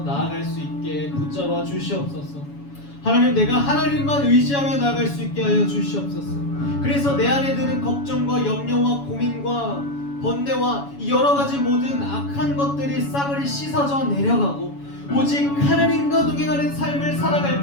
나아갈 수 있게 붙잡아 주시옵소서. 하나님, 내가 하나님만 의지하며 나아갈 수 있게 하여 주시옵소서. 그래서 내 안에 드는 걱정과 염려와 고민과 번뇌와 이 여러 가지 모든 악한 것들이 싸그리 씻어져 내려가고 오직 하나님과 동행하는 삶을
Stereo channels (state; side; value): late; right; 7.1 ms